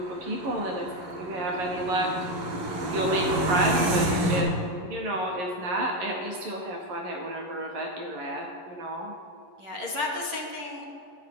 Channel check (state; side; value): late; left; 11 ms